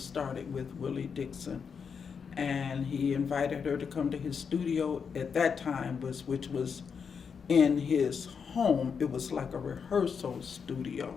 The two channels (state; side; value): quieter; right; 6.3 dB